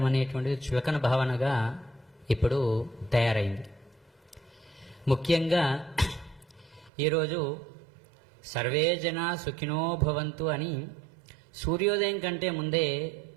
అనేటువంటిది చులకన భావనగా ఇప్పుడు తయారైంది. ముఖ్యంగా ఈరోజు సర్వే జనా సుఖినో భవంతు అని సూర్యోదయం కంటే ముందే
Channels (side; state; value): left; drops out; at 6.9 s